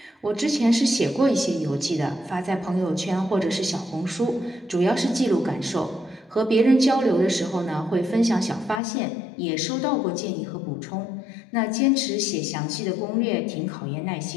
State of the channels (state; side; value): drops out; right; at 8.8 s